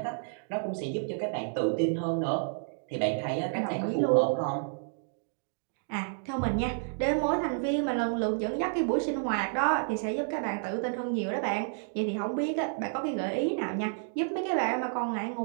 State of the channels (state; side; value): silent; left; digital silence